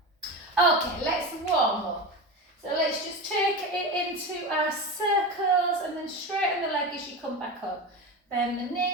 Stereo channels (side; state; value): both; normal; correlation 0.23